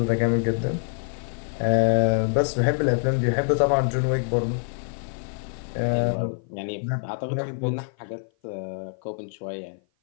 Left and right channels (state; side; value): silent; right; 55 dB below the other